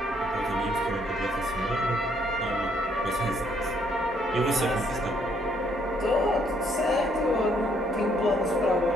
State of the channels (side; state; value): both; normal; correlation 0.68